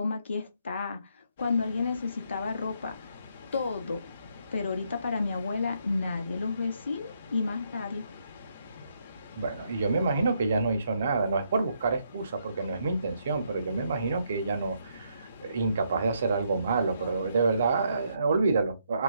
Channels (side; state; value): both; inverted; correlation -0.75